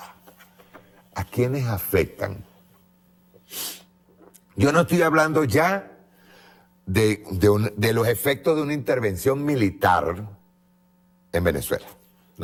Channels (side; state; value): both; identical; correlation 1.00